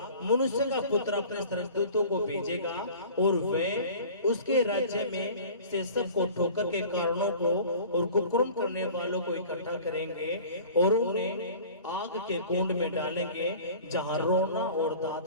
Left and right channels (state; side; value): inverted; both; correlation -0.43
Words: मनुष्य का पुत्र अपने स्वर्गदूतों को भेजेगा और वे उसके राज्य में से सबको ठोकर के कारणों को और कुकर्म करने वालों को इकट्ठा करेंगे और उन्हें आग के कुंड में डालेंगे, जहां रोना और